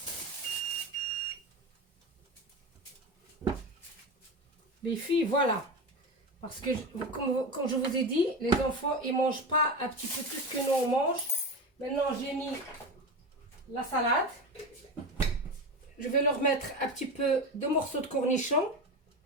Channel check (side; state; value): both; normal; correlation 0.23